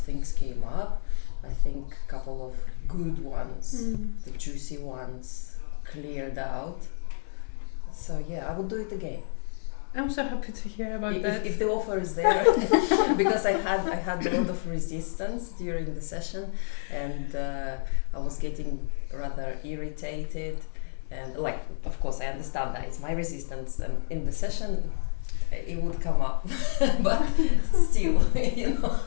came up. I think a couple of good ones, the juicy ones, cleared out. So yeah, I would do it again. I'm so happy to hear about that. If the offer is there, because I had a lot of resistance during the session, and I was getting rather irritated, and of course I understand that it's my resistance, and in the session it would come up, but still, if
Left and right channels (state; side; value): silent; right; 59 dB below the other